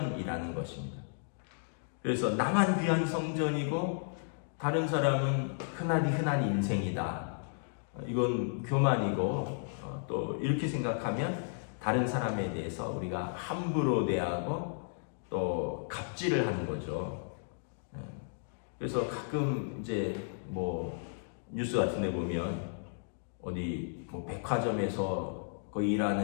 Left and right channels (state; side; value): silent; right; digital silence